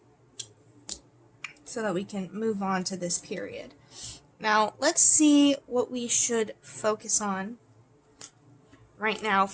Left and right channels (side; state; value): both; identical; correlation 1.00